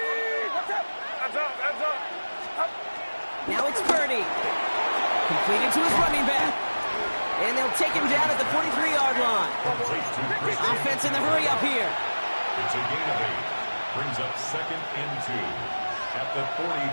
Now it's Purdy. Completed to his running back. And they'll take him down at the 43-yard line. Offense in the hurry up here. It's a gain of 8. Brings up second and 2 at the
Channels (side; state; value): both; inverted; correlation -1.00